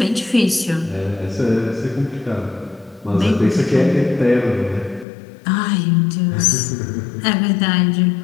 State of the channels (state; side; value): drops out; right; at 5.1 s